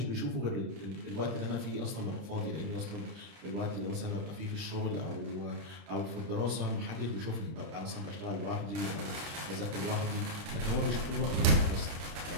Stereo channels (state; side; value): late; left; 30 ms